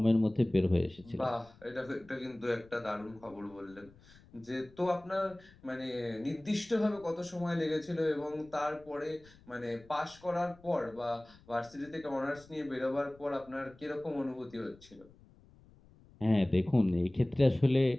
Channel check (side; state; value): left; noise; rumble, 25 dB below the sound